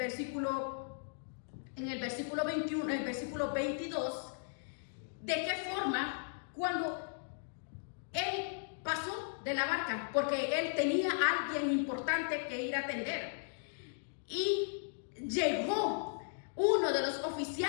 21, el versículo 22, de qué forma cuando él pasó de la barca, porque él tenía a alguien importante que ir a atender, y llegó uno de los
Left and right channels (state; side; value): silent; right; digital silence